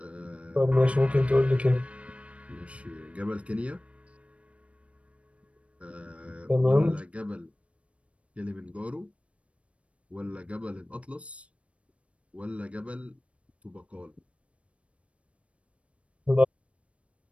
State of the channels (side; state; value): left; late; 0.062 ms